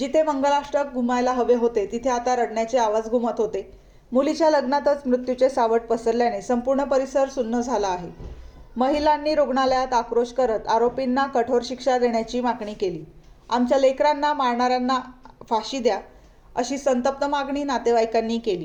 मंगलाष्टक घुमायला हवे होते तिथे आता रडण्याचे आवाज घुमत होते. मुलीच्या लग्नातच मृत्यूचे सावट पसरल्याने संपूर्ण परिसर सुन्न झाला आहे. महिलांनी रुग्णालयात आक्रोश करत आरोपींना कठोर शिक्षा देण्याची मागणी केली. आमच्या लेकरांना मारणाऱ्यांना फाशी द्या, अशी संतप्त मागणी नातेवाईकांनी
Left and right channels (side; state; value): both; identical; correlation 1.00